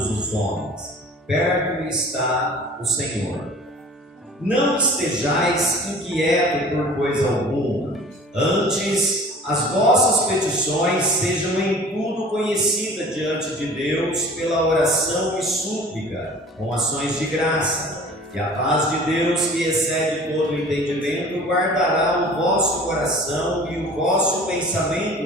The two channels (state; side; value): normal; both; correlation 0.45